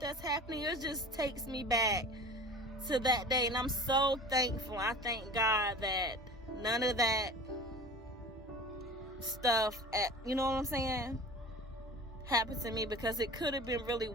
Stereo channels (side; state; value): both; normal; correlation 0.38